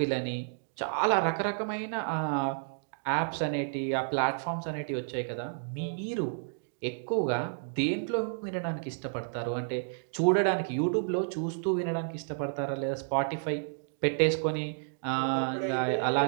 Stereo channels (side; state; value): left; silent; digital silence